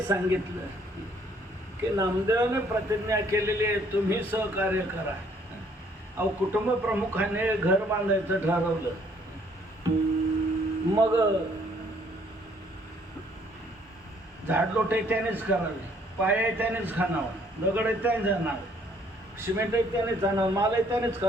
सांगितलं की नामदेवाने प्रतिज्ञा केलेली आहे, तुम्ही सहकार्य करा. अहो, कुटुंब प्रमुखाने घर बांधायचं ठरवलं. मग झाडलोटे त्यानेच करावे, पाया त्यानेच खाणावं, दगड त्यानेच आणावं, सिमेंट त्यानेच आणावं, माल त्यानेच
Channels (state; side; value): normal; both; correlation 0.63